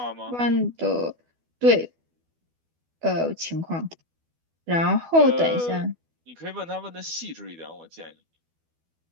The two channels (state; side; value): late; left; 12 ms